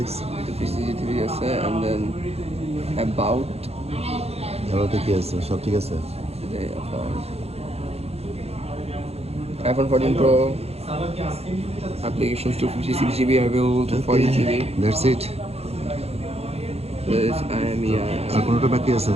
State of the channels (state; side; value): late; left; 0.30 ms